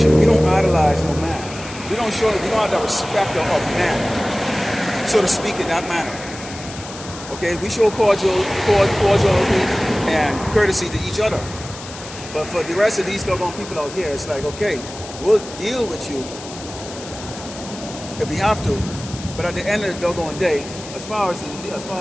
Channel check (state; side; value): noise; left; hiss, 14 dB below the sound